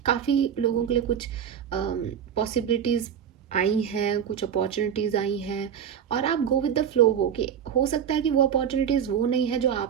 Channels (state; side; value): quieter; left; 8.4 dB